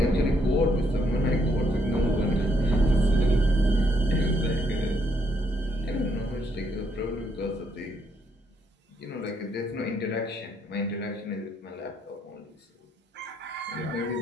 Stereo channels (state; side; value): normal; both; correlation 0.73